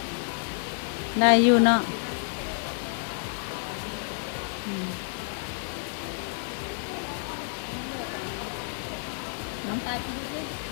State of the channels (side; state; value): right; silent; digital silence